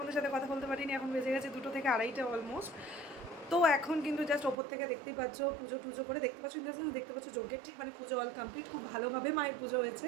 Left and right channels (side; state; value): left; drops out; at 4.5 s